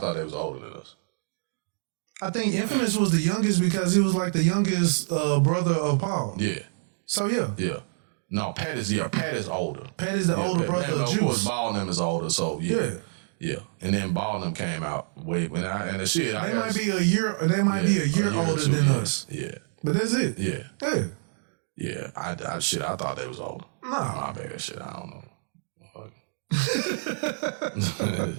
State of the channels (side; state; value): left; silent; digital silence